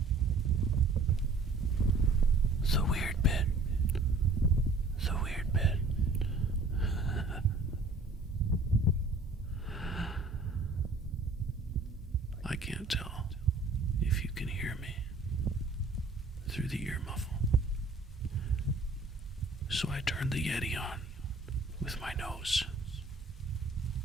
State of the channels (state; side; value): quieter; left; 3.4 dB